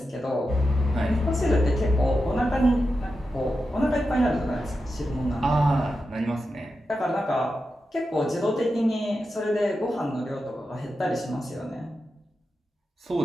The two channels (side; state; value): both; normal; correlation 0.90